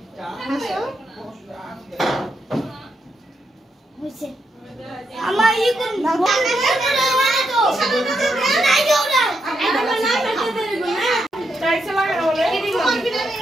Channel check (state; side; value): normal; both; correlation 0.81